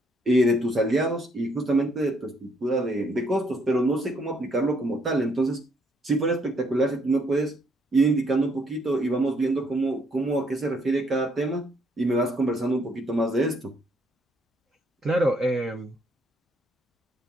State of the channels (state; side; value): normal; both; correlation 0.69